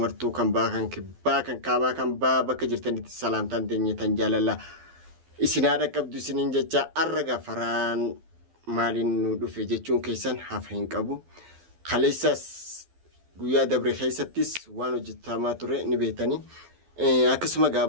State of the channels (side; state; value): left; late; 12 ms